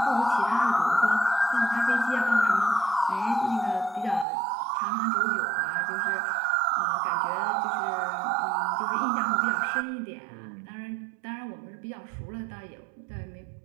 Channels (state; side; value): drops out; left; at 4.2 s